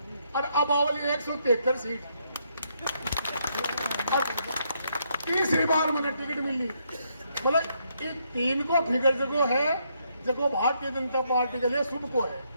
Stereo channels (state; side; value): inverted; both; correlation -0.75